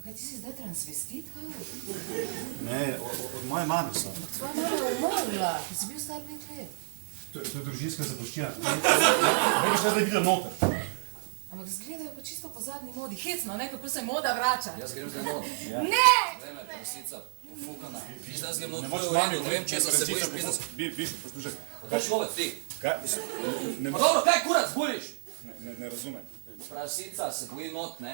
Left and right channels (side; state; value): left; silent; digital silence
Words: kaj ti si zdaj transvestit, kaj? Ne, od moje mame so. Tvoja mama je umrla, ti si bil star 5 let. To je družinska zapuščina. Ne bi šla zdaj videla noter. Ampak zgledajo pa čisto po zadnji modi. Hecno, ne, kako se moda vrača. Jaz grem zdaj not. Ne! Vreme, prosica. Fukana. Viš, da grem not, Ne to moreš je v redu, ne vem, če se bojiš pisati. Biš, poslušaj. Kaj človek ti? Kaj? Pa dobro, kaj kurac buliš? Ne razumem. Prasica se boji not,